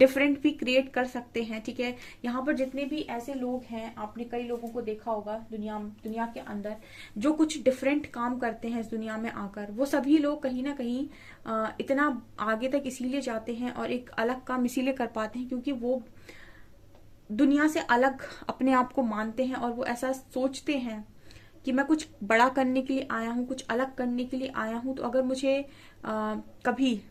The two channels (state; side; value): identical; both; correlation 1.00